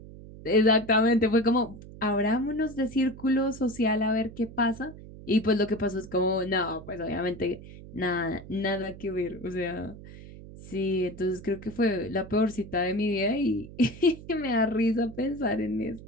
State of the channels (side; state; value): right; noise; hum, 16 dB below the sound